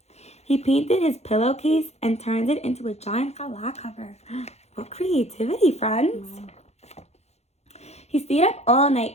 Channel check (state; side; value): late; right; 0.31 ms